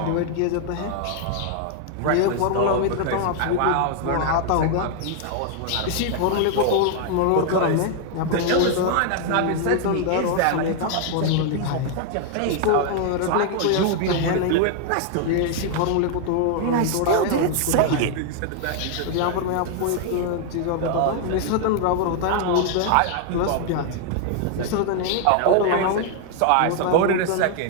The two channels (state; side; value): different; both; correlation 0.00